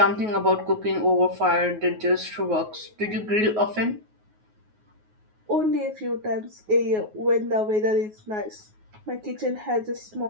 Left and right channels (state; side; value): late; left; 9.4 ms